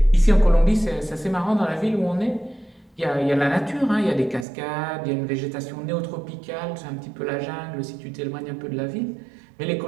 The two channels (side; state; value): left; drops out; at 4.5 s